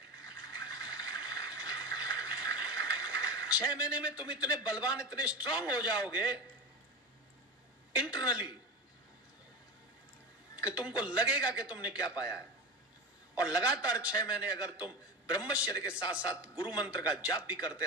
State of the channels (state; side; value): normal; both; correlation 0.24